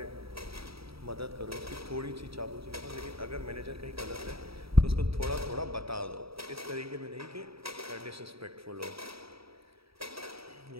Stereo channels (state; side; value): late; left; 0.76 ms